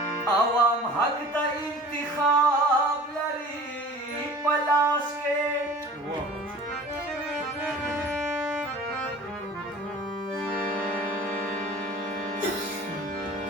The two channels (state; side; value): normal; both; correlation 0.43